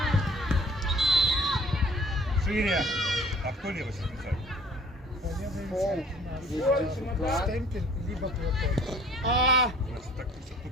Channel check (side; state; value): both; normal; correlation 0.53